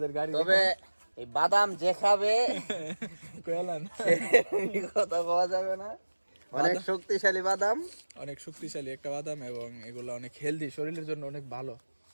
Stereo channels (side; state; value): both; inverted; correlation -1.00